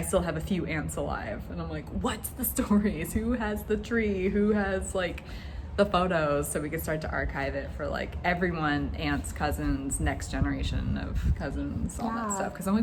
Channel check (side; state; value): both; identical; correlation 1.00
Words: still have a few aunts alive, and I'm like, what's the stories? Who has the tree? Who has the photos? So we could start to archive it for everyone, aunts, cousins, next generation of cousins, all that stuff. Because I'm